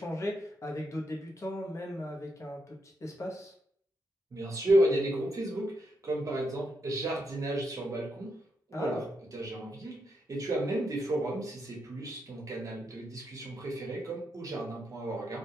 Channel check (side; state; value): both; normal; correlation 0.82